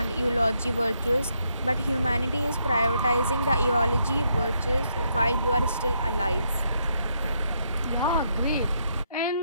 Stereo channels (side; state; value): both; inverted; correlation -0.76